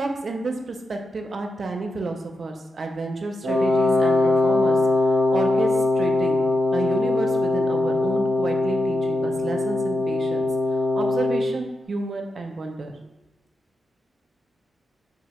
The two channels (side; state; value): both; normal; correlation 0.88